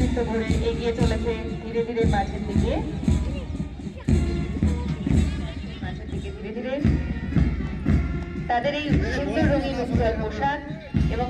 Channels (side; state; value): both; identical; correlation 1.00